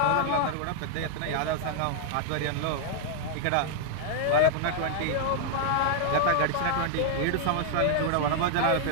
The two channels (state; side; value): different; both; correlation -0.01